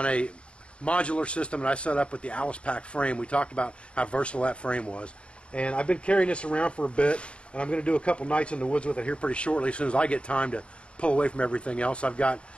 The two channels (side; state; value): right; late; 0.058 ms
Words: a modular system that I set up with the Alice Pack frame. We talked about how versatile that frame was. And I've been carrying this around for a bit, and I'm going to do a couple nights in the woods with it here pretty shortly as soon as I get time to pull away from everything else. I've got,